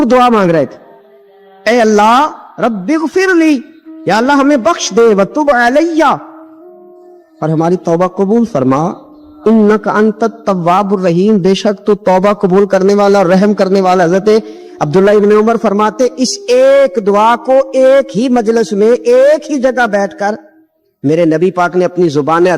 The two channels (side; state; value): both; identical; correlation 1.00